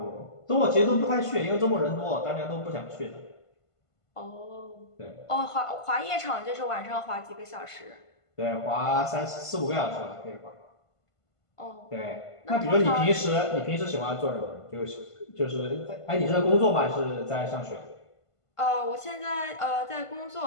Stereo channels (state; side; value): late; right; 1.5 ms